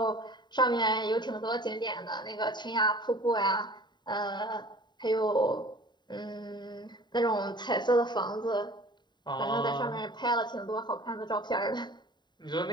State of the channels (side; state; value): right; late; 0.21 ms